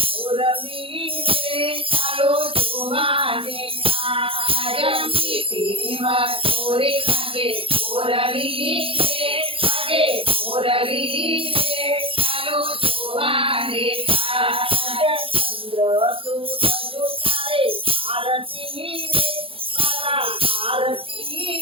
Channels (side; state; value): left; late; 0.27 ms